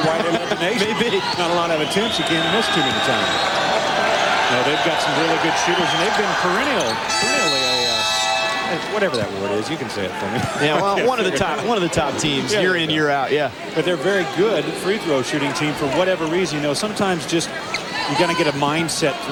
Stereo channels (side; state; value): both; identical; correlation 1.00